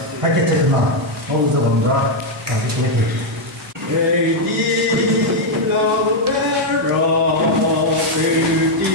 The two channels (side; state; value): both; normal; correlation 0.00